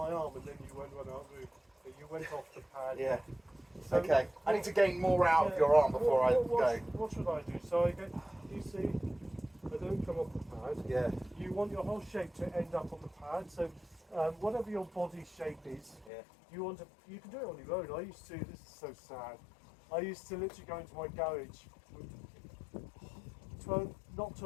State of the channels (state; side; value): drops out; right; at 16.1 s